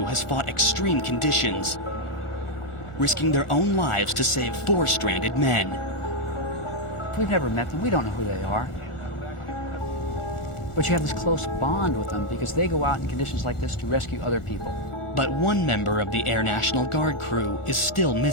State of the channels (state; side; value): late; right; 1.5 ms